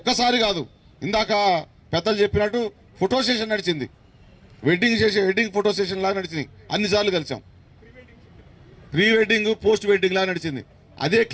కాదు, ఇందాక పెద్దలు చెప్పినట్టు ఫోటో సెషన్ నడిచింది, వెడ్డింగ్ ఫోటో సెషన్ లాగా నడిచింది. అన్నిసార్లు కలిసాం. ప్రీ వెడ్డింగ్, పోస్ట్ వెడ్డింగ్ లాగా నడిచింది. అదే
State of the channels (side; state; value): both; identical; correlation 1.00